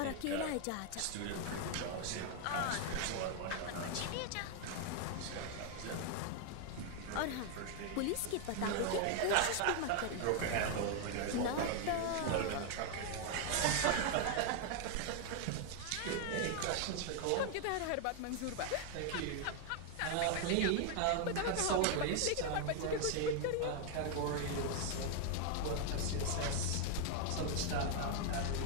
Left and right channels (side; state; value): both; different; correlation 0.00